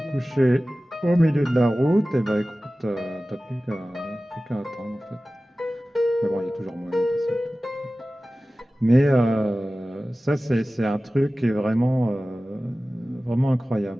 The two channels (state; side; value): normal; both; correlation 0.96